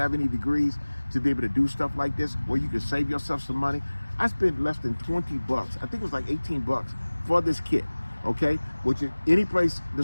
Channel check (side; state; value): both; inverted; correlation -1.00